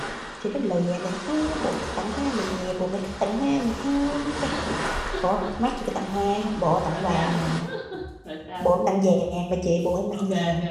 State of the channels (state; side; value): identical; both; correlation 1.00